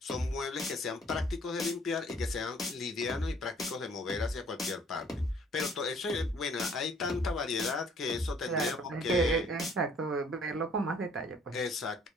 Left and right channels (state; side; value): normal; both; correlation 0.59